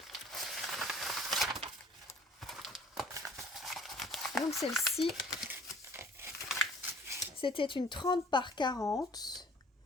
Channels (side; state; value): both; normal; correlation 0.53